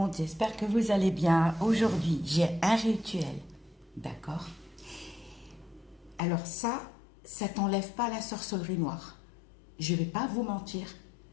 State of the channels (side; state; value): right; drops out; at 6.2 s